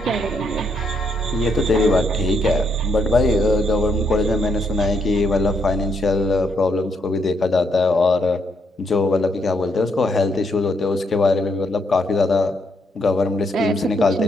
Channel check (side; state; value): both; normal; correlation 0.75